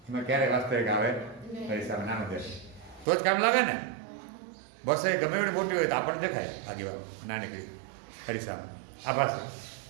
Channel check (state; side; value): drops out; left; at 3.1 s